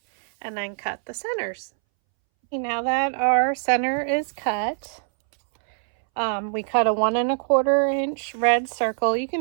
and then cut the centers. Now that our center is cut, we cut a 1¼ inch red circle. You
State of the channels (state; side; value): silent; left; 63 dB below the other